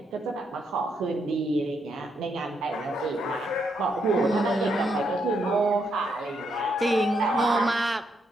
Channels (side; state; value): both; normal; correlation 0.77